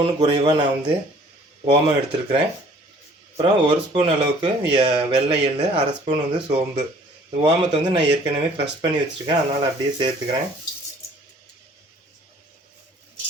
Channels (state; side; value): normal; both; correlation 0.55